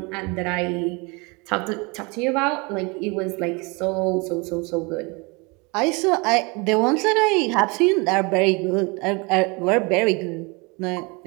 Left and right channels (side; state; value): left; quieter; 28.6 dB